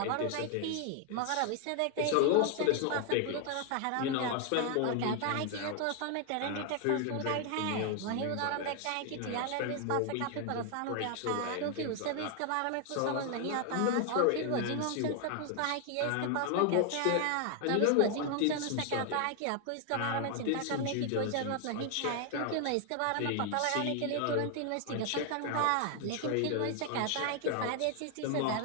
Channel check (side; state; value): both; different; correlation 0.00